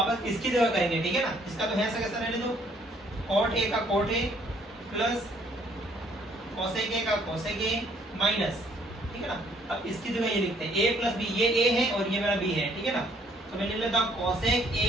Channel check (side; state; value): both; normal; correlation 0.64